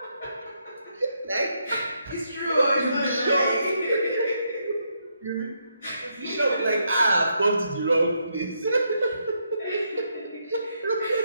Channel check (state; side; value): inverted; both; correlation -0.78